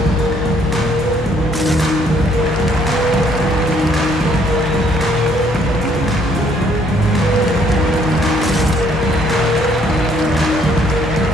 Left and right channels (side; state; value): both; normal; correlation 0.65